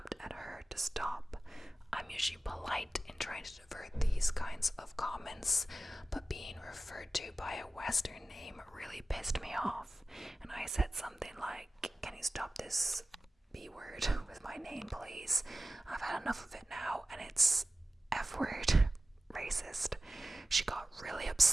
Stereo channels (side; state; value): both; normal; correlation 0.96